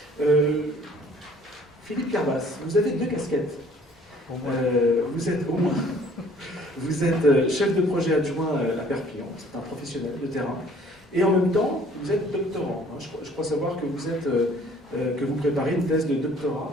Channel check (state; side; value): normal; both; correlation 0.56